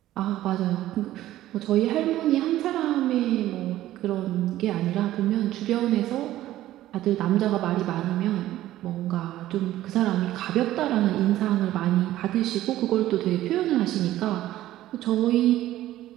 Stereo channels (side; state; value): left; quieter; 14.3 dB